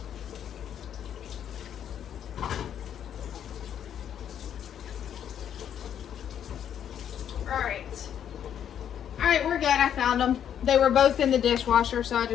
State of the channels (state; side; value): quieter; right; 9.4 dB